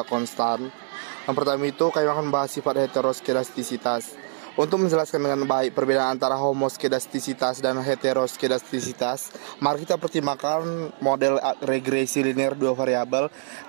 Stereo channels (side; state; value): left; silent; digital silence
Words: konstan? Yang pertama itu, kami akan membahas sifat heteroskedastisitas. Untuk menjelaskan dengan baik perbedaan antara homoskedastisitas dan heteroskedastisitas, mari kita pertimbangkan model regresi linear dua variabel,